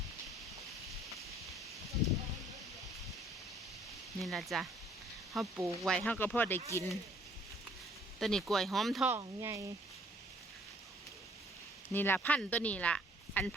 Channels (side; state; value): both; normal; correlation 0.60